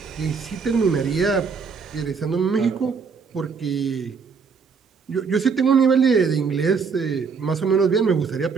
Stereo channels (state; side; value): quieter; left; 5.5 dB